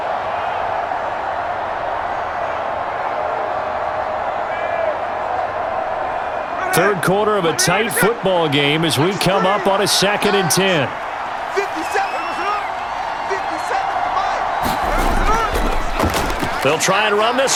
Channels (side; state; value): both; identical; correlation 1.00